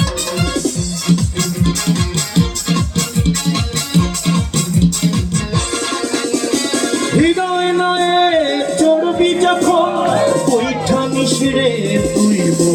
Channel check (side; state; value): both; identical; correlation 1.00